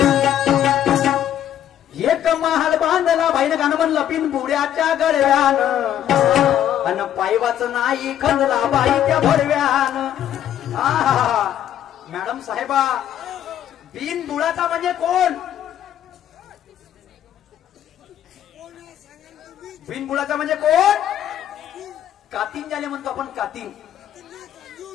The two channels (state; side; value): quieter; right; 10.8 dB